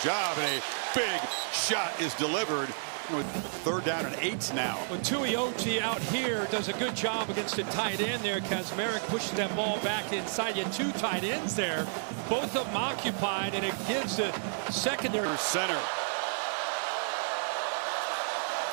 job, and a big shot is delivered. With third down and 8 now. Well, Tuioti out here does a good job against the tight end there. Kazmarek pushes that ball back inside. You had 2 tight ends there, both of them occupied, and it gives the secondary. Center.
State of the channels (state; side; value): silent; left; digital silence